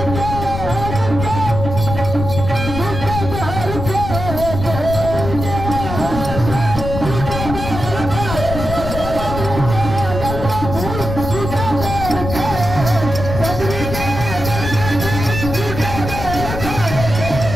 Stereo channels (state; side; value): noise; left; rumble, 6 dB below the sound